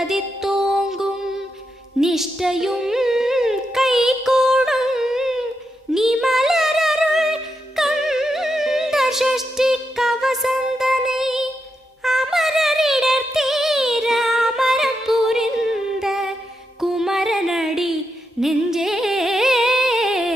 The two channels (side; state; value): both; normal; correlation 0.84